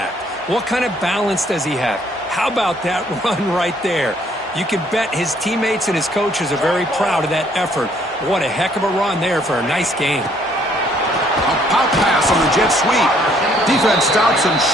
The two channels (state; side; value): normal; both; correlation 0.64